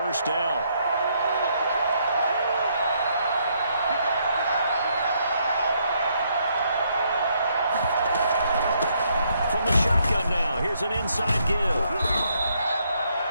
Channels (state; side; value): inverted; both; correlation -0.73